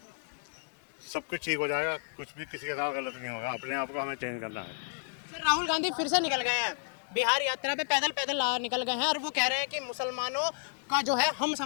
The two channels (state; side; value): silent; right; digital silence